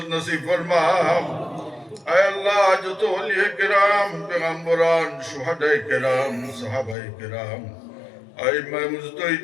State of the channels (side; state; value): right; drops out; at 7.0 s